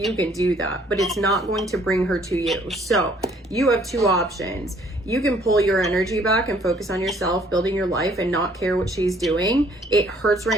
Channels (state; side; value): normal; both; correlation 0.61